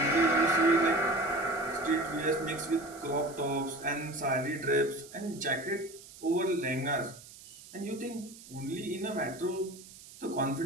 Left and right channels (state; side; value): noise; right; hiss, 18 dB below the sound